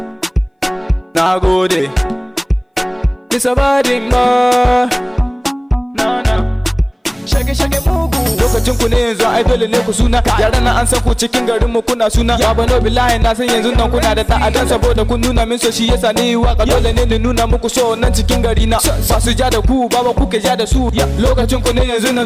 Nagode. It's a bad boy. No. Shage mugu. Lokacin ku ne yanzu ai dole ne ku suna. Yaran nan an san ku cikin garin mu kuna suna. Ya bano billahi na san yanzu nan kuna da ta'adan saboda kun nuna min so shi yasa ni waka dole ne ni nuna muku so nan cikin gari na. Ba su ja da ku baba kuke ja da su. Lokacin ku ne yanzu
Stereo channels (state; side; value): identical; both; correlation 1.00